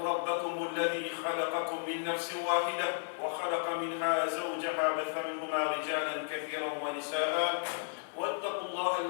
ربكم الذي خلقكم من نفس واحدة وخلق منها زوجها بث منهما رجالا كثيرا ونساء واتقوا الله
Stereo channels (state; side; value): silent; right; digital silence